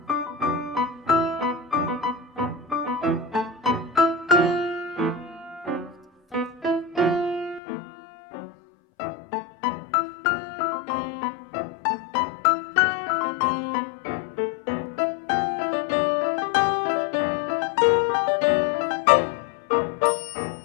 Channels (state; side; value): drops out; right; at 7.6 s